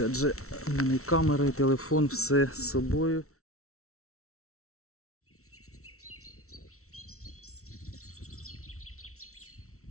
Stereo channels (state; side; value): late; right; 0.63 ms